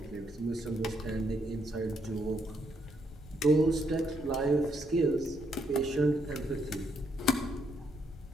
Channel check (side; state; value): both; normal; correlation 0.75